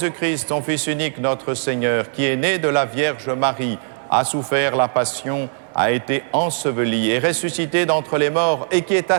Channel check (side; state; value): left; silent; 66 dB below the other